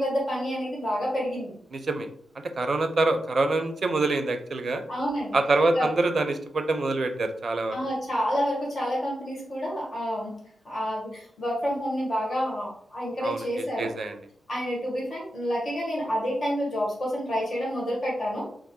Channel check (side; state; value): both; normal; correlation 0.89